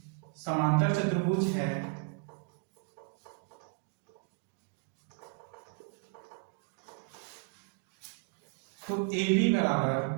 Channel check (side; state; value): left; quieter; 36.4 dB